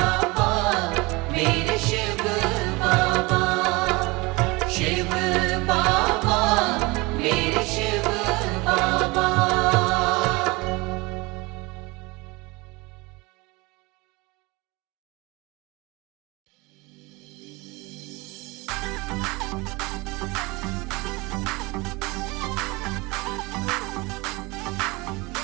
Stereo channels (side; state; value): left; quieter; 24.4 dB